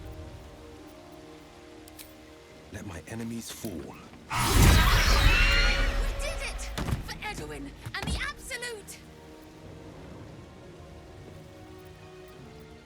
Let my enemies fall. We did it! For Edwin and the Absolute! Loot!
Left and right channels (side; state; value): both; identical; correlation 1.00